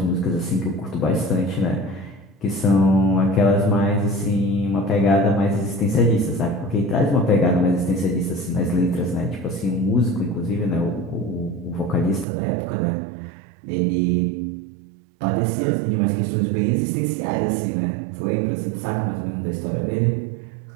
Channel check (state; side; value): drops out; left; at 12.2 s